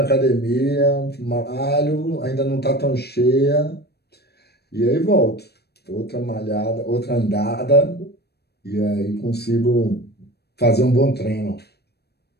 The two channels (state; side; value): late; right; 0.47 ms